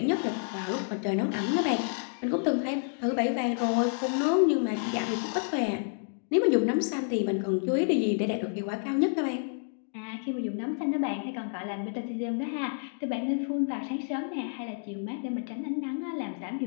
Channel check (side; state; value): right; silent; digital silence